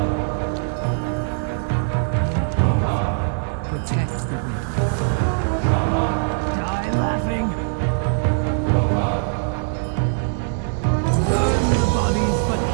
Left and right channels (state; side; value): silent; left; digital silence